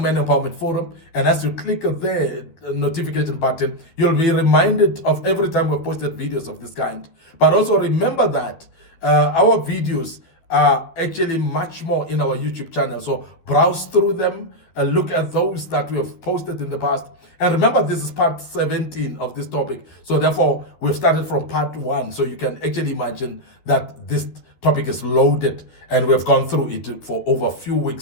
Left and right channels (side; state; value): right; late; 12 ms